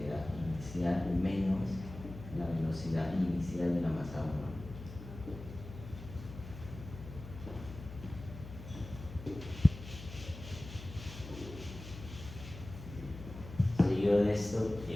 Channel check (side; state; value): left; noise; hum, 13 dB below the sound